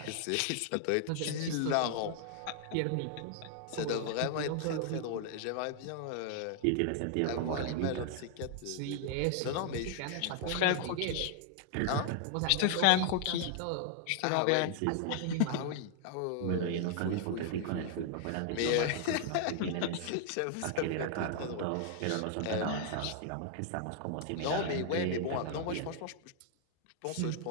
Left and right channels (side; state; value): both; different; correlation 0.00